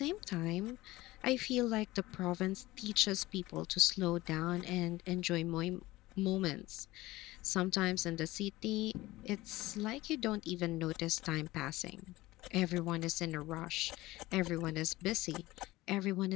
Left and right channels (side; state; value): right; quieter; 18.6 dB